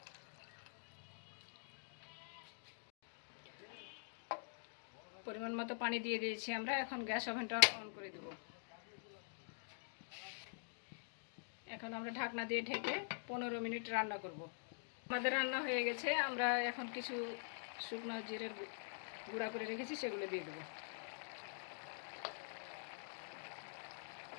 পরিমাণ মতো পানি দিয়ে দিয়েছি আমরা। এখন গ্যাস ওভেনটা অন করে দেব। এখন আমরা ঢাকনা দিয়ে ঢেকে 15 মিনিট রান্না করব। আমাদের রান্না হয়ে গেছে। আমরা এখন কিছু শুকনো জিরের গুঁড়া করে রেখেছি, সেগুলো দিয়ে দেব।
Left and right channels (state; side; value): silent; right; digital silence